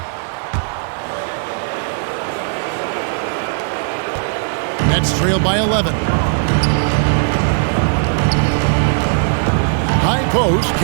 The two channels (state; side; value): silent; left; digital silence